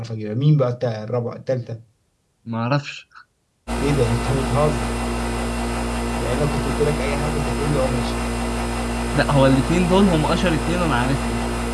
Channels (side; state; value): both; identical; correlation 1.00